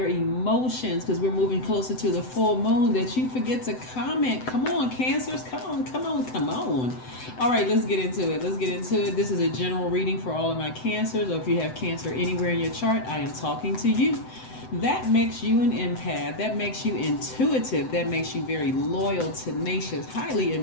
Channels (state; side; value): late; right; 7.9 ms